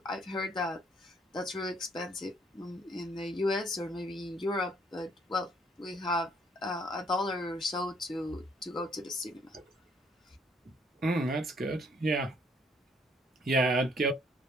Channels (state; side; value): normal; both; correlation 0.64